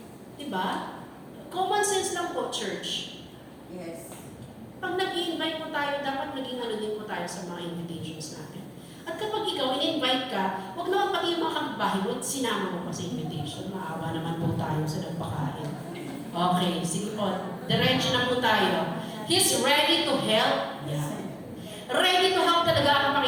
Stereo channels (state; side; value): identical; both; correlation 1.00